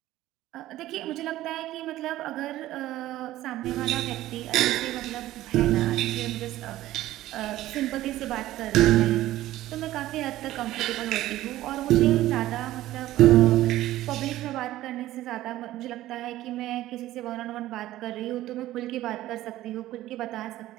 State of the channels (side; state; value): left; quieter; 15.1 dB